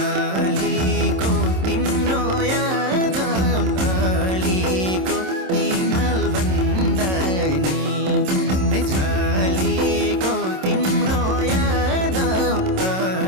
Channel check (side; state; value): left; late; 27 ms